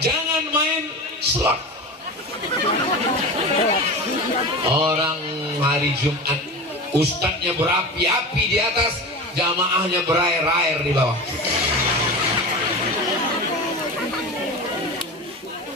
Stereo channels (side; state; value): both; normal; correlation 0.29